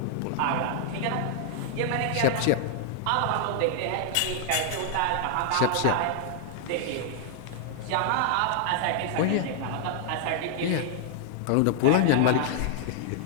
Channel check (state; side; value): different; both; correlation -0.01